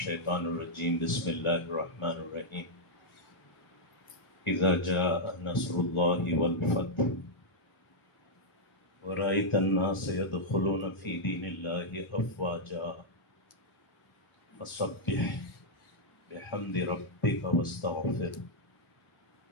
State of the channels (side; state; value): right; late; 1.4 ms